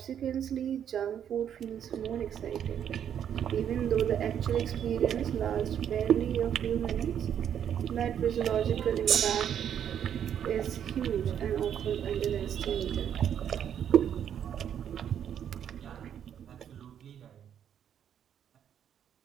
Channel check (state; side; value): quieter; left; 9.1 dB